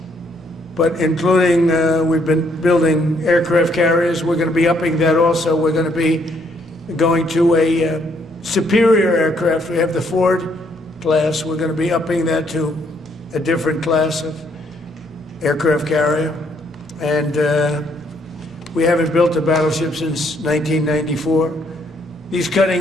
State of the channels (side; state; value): both; normal; correlation 0.70